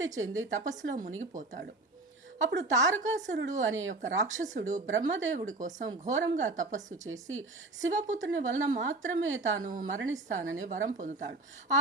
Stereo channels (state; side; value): quieter; left; 3.1 dB